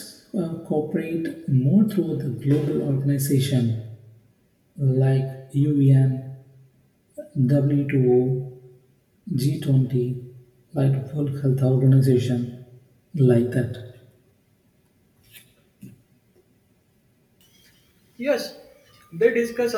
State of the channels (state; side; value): identical; both; correlation 1.00